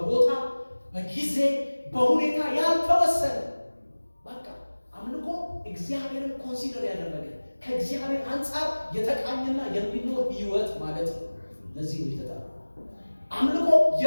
በጊዜ በሁኔታ ያልተወሰነ በቃ አምልኮ እግዚአብሔርን ኮንሲደር ያደረገ ከእግዚአብሔር አንጻር የተቃኘና የሚኖር ህይወት ማለት ነው። ለዚህ ነው የተጠራው። አምልኮ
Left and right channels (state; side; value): inverted; both; correlation -1.00